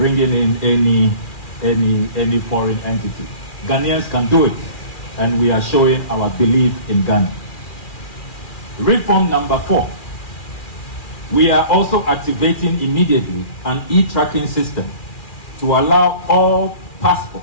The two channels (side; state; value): right; late; 2.4 ms